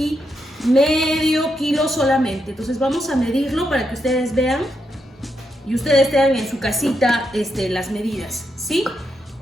medio kilo solamente. Entonces vamos a medirlo para que ustedes vean y ustedes tengan en su casita las medidas, ¿sí?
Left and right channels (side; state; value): both; normal; correlation 0.82